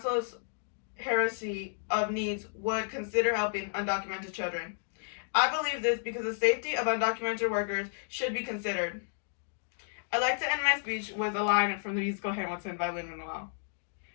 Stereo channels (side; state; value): right; silent; digital silence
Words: hierarchy of needs would consider helping undocumented children. I believe this because the safety of undocumented workers should be considered. I'd like to end my speech with a line from the musical Hamilton by Lin-Manuel.